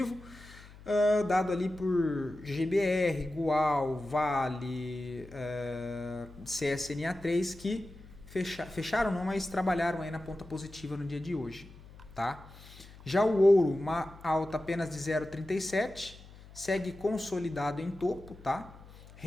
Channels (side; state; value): left; noise; hum, 19 dB below the sound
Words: dado ali por GBR, Gual, Vale, CSNA3, que fecharam não, mas trabalharam aí na ponta positiva no dia de hoje. Tá? Já o ouro, uma alta apenas de 0,37, segue consolidado em topo, tá?